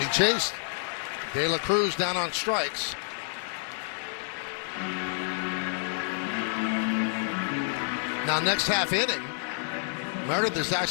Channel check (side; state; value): right; silent; digital silence